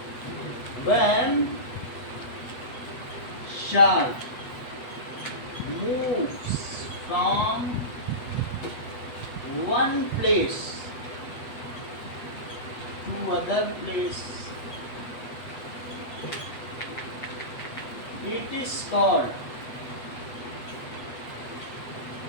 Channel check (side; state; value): right; late; 8.1 ms